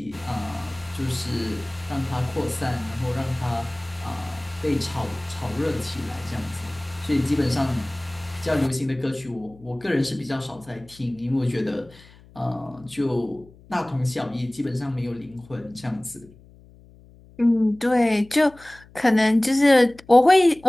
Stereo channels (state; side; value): noise; left; hum, 24 dB below the sound